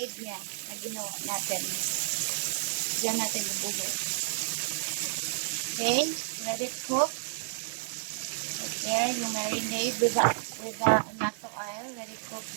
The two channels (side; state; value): left; silent; digital silence